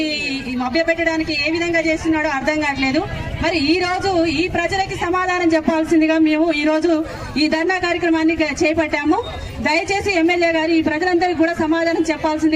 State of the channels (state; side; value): identical; both; correlation 1.00